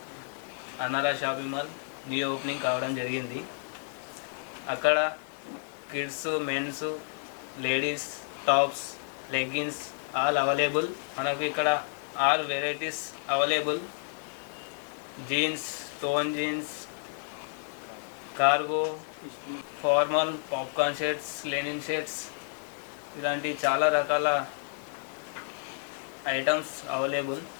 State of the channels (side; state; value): right; silent; 57 dB below the other